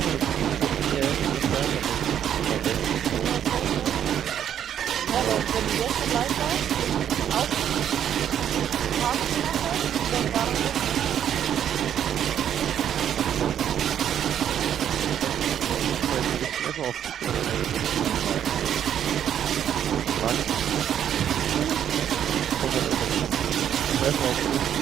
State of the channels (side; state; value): left; quieter; 9.7 dB